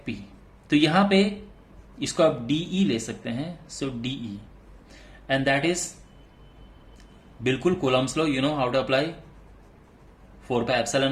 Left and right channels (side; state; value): both; identical; correlation 1.00